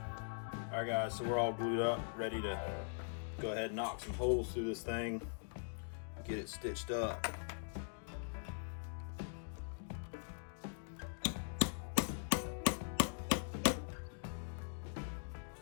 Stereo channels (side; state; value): right; silent; digital silence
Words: Alright guys, so we're all glued up, ready to go ahead and knock some holes through this thing, get it stitched up.